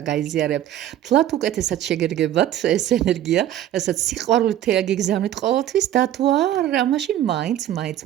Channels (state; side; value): quieter; left; 12.1 dB